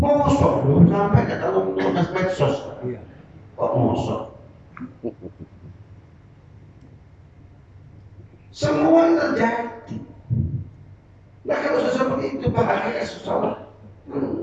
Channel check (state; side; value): identical; both; correlation 1.00